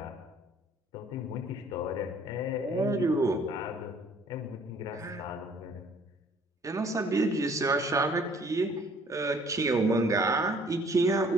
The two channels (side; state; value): both; normal; correlation 0.57